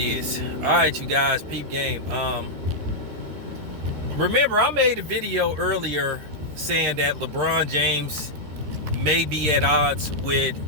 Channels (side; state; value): left; late; 13 ms